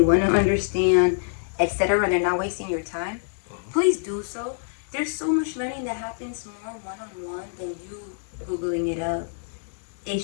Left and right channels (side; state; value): right; silent; digital silence